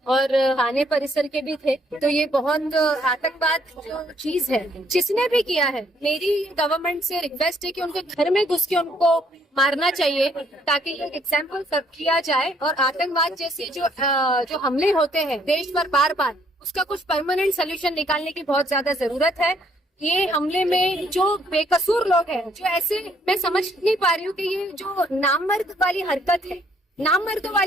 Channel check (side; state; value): both; normal; correlation 0.67